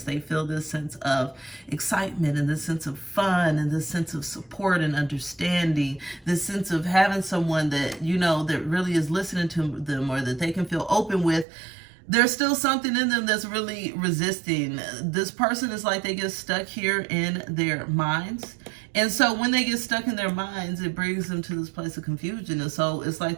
they feel this sense of excitement and this sense of fun and this sense of support and understanding, this sense of having someone that, that really is listening to them, or that they can feel open with. There's still something in them that's really resisting. This person is like they get stuck here in their minds. And so when they get stuck in their minds, it brings them to this place of confusion. And so it's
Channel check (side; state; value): left; drops out; at 11.5 s